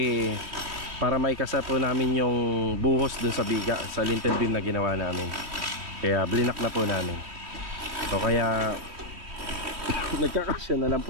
para maikasa po namin yung buhos doon sa biga, sa lintel beam na ginawa namin. Kaya blinak na po namin. So kaya Nagkakasya na lang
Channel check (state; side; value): late; left; 3.1 ms